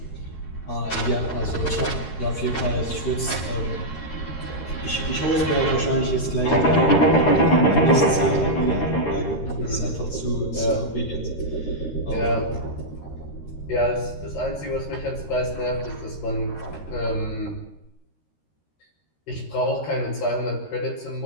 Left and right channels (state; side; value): late; right; 13 ms